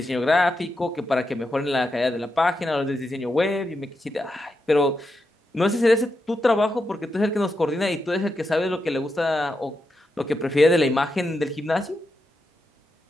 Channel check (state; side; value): normal; both; correlation 0.86